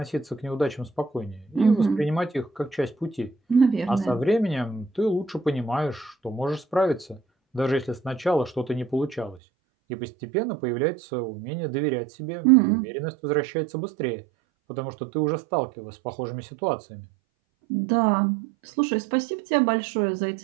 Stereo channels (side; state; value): left; drops out; at 9.4 s